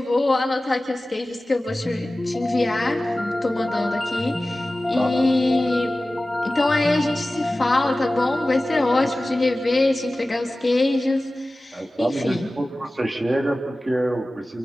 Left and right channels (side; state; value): both; normal; correlation 0.96